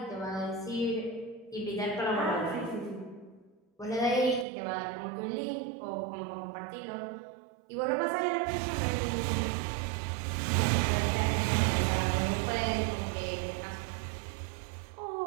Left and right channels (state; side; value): drops out; left; at 4.5 s